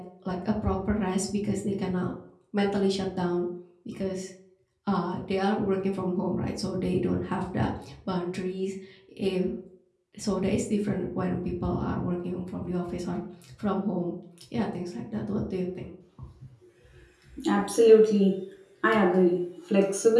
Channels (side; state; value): both; identical; correlation 1.00